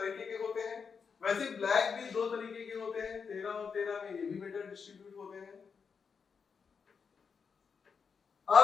के होते हैं। वैसे ब्लैक भी दो तरीके के होते हैं, 13 और 13 में ये भी बेटा डिस्ट्रीब्यूट होते हैं।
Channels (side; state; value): right; quieter; 5.9 dB